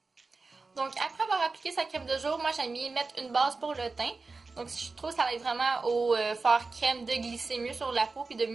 Donc après avoir appliqué sa crème de jour, moi j'aime bien mettre une base pour le teint. Donc je trouve que ça aide vraiment au faire crème de glisser mieux sur la peau puis de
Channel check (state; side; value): quieter; left; 3.9 dB